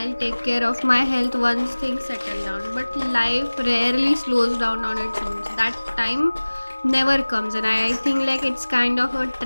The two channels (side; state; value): both; inverted; correlation -1.00